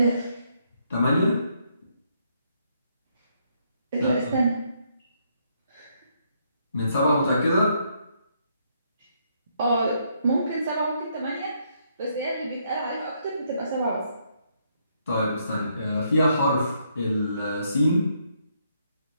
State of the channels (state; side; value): inverted; both; correlation -0.74